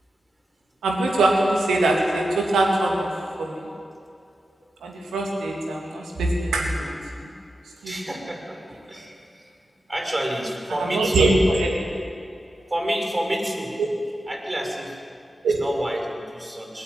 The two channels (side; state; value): both; normal; correlation 0.89